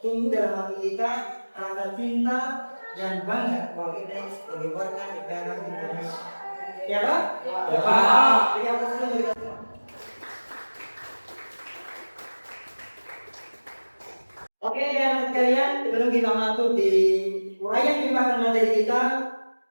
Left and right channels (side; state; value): both; inverted; correlation -1.00